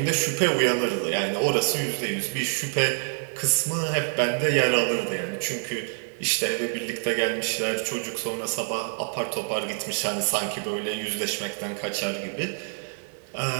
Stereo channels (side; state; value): left; silent; 59 dB below the other